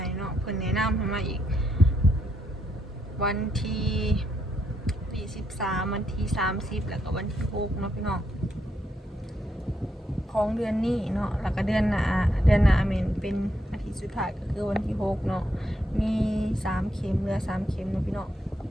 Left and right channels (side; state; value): both; normal; correlation 0.78